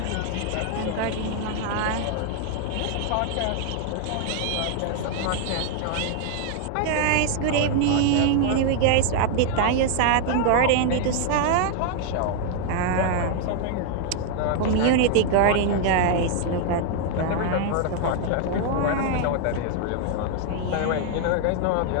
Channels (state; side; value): different; both; correlation 0.00